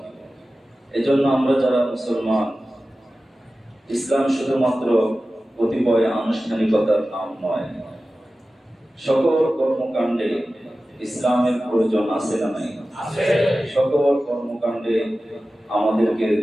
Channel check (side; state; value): both; normal; correlation 0.95